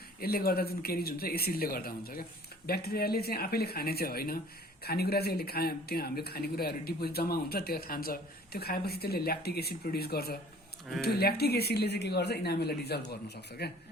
यसले गर्दा जुन केरिज हुन्छ एसिडले गर्दा हुन्छ क्या ब्याक्टेरियाले चाहिँ आफैले खाने चाहिँ होइन खानेकुरा चाहिँ यसले त्यो हाम्रो खानेकुराहरू डिपोजिट जम्मा हुन्छ त्यो खान्छ त्यो खाएपछि त्यसले ल्याक्टिक एसिड प्रड्युस गर्छ त्यो ल्याक्टिक एसिडले चाहिँ के गर्छ इनामेललाई डिजल्भ गर्न सक्छ क्या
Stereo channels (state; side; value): normal; both; correlation 0.51